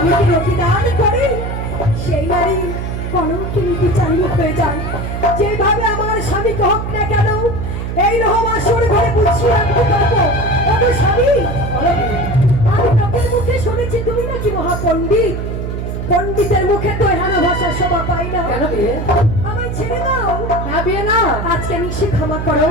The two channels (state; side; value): noise; right; hum, 4 dB below the sound